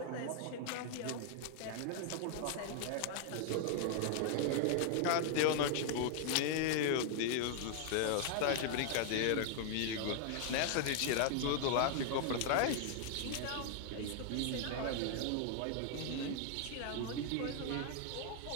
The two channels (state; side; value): different; both; correlation 0.00